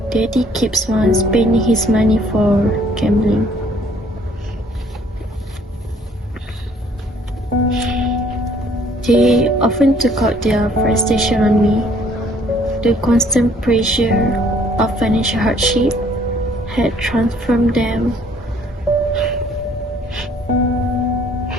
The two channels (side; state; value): both; normal; correlation 0.60